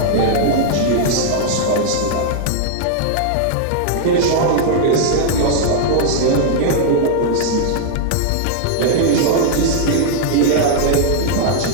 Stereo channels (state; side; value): different; both; correlation -0.01